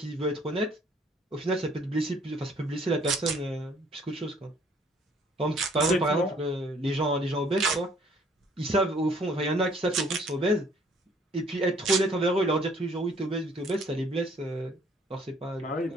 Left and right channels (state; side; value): normal; both; correlation 0.60